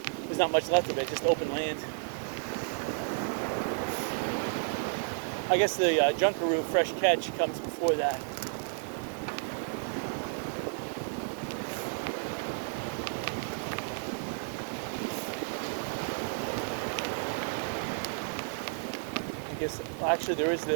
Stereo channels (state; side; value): silent; left; digital silence